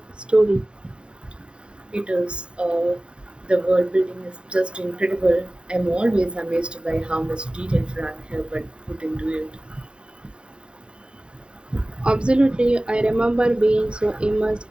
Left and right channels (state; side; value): late; left; 0.052 ms